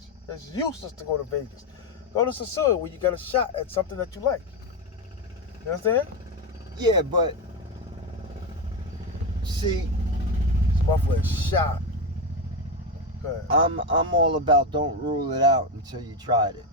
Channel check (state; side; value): normal; both; correlation 0.11